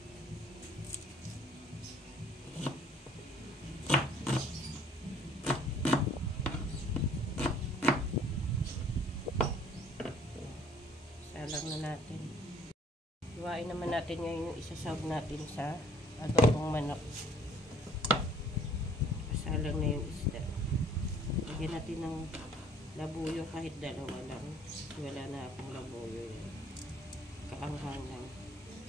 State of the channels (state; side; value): normal; both; correlation 0.58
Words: Salang na natin. Iwain naman natin ngayon yung isasawag natin sa adobong manok. Salang na yung isda. Lagyan natin ng labuyo kahit dalawa lang. Wala na akong labuyo yan. Kaanghang lang.